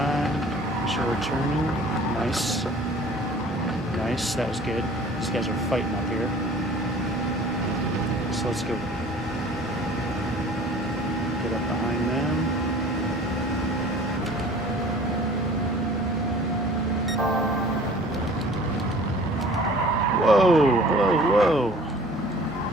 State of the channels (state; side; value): normal; both; correlation 0.48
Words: Make sure we're turning. Nice. Nice. That was good. These guys are fighting up here. So let's go.